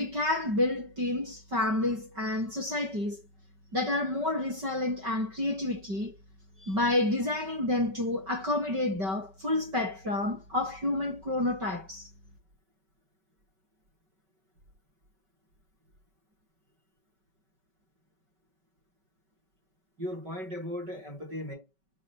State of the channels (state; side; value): late; left; 5.3 ms